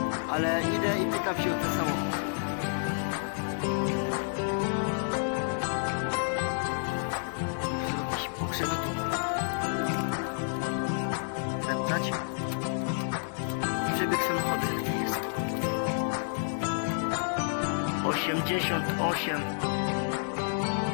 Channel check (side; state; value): right; silent; digital silence